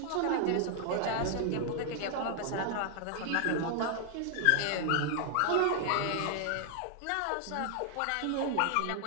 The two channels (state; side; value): different; both; correlation 0.00